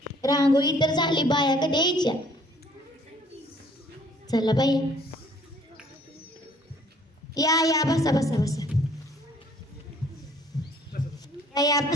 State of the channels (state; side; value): normal; both; correlation 0.59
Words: रांगोळी तर झाली, बाया कधी यायच्या. चला बाया, या या बसा बसा बसा, या